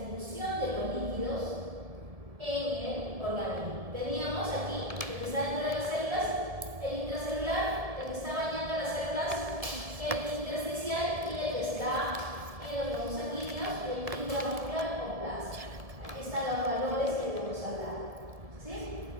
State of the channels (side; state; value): left; late; 1.7 ms